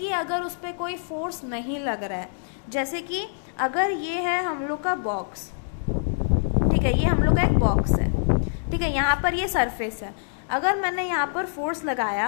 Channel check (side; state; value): right; silent; digital silence